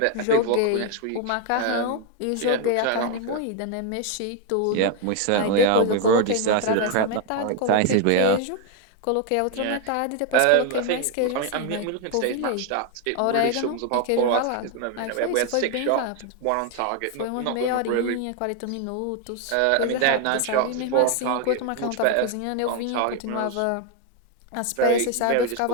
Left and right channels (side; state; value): both; different; correlation 0.01